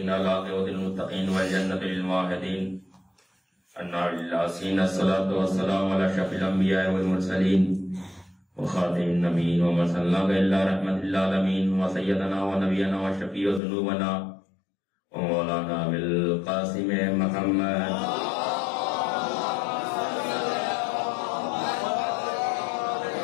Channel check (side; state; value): right; drops out; at 13.6 s